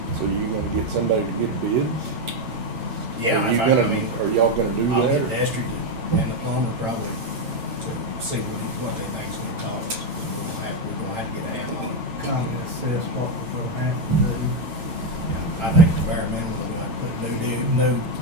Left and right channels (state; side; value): late; left; 9.0 ms